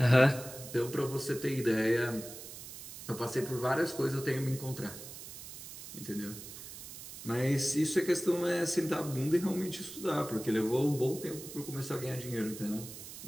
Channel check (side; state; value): right; noise; hiss, 12 dB below the sound